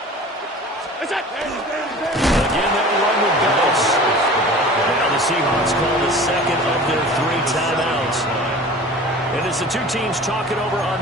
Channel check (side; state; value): both; normal; correlation 0.41